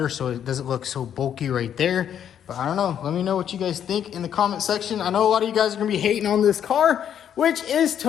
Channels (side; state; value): right; quieter; 9.3 dB